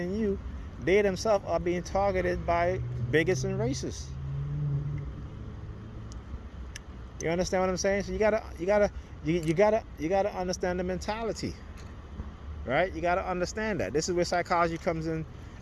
you, they themselves are being targeted by bigots and racists. You understand what I'm saying? So you gotta understand the mentality, right? You gotta understand that. This is where psychology comes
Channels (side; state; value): both; identical; correlation 1.00